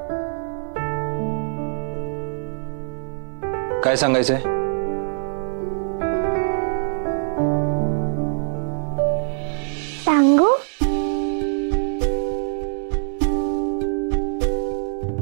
काय सांगायचंय? सांगू?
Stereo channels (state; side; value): silent; left; 63 dB below the other